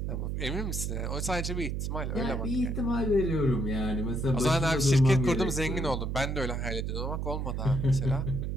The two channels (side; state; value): right; noise; hum, 2 dB below the sound